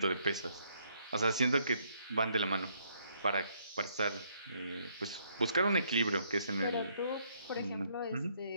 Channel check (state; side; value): inverted; both; correlation -0.70